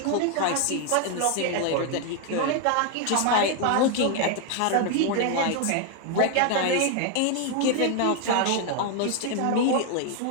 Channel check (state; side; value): different; both; correlation 0.01